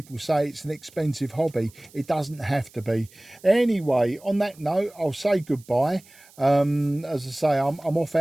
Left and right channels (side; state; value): right; noise; hiss, 26 dB below the sound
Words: say it's an expensive hobby. It doesn't have to be. Anyway, on that note, I'll say goodbye. As I say, I'm off